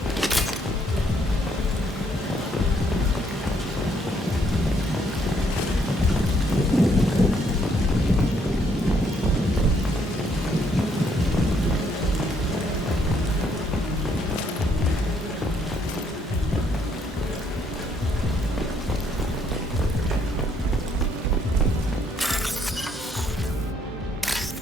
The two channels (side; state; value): both; normal; correlation 0.70